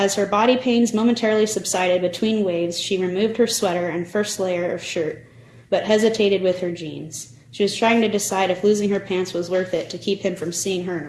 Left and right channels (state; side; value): identical; both; correlation 1.00